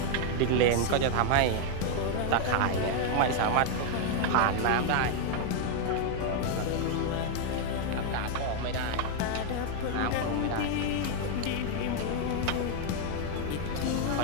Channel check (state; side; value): different; both; correlation 0.00